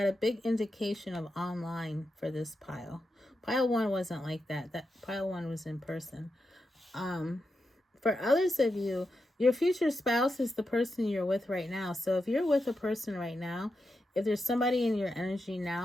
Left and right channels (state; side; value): normal; both; correlation 0.88